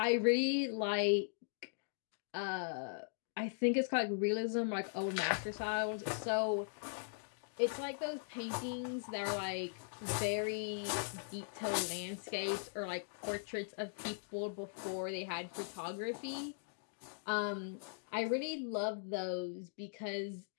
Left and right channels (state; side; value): silent; right; digital silence